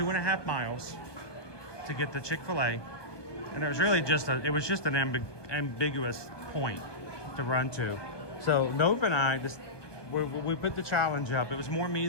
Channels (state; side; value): late; right; 1.2 ms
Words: miles to get the Chick-fil-A, and it was really just an ambiguous point to run to. So Nova and I we put the challenge up. It was more me